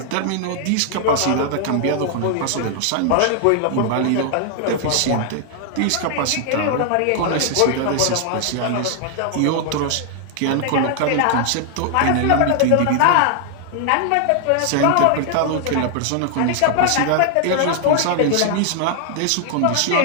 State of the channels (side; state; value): both; different; correlation 0.00